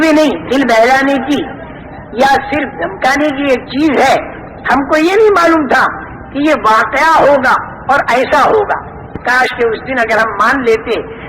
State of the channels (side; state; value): both; identical; correlation 1.00